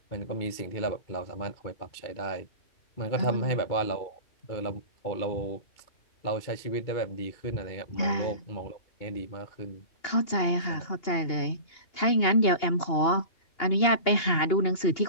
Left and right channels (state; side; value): late; right; 2.8 ms